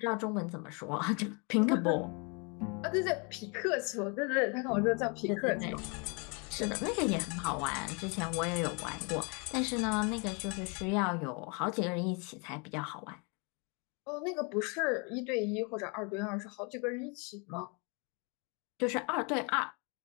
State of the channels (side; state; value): right; quieter; 33.3 dB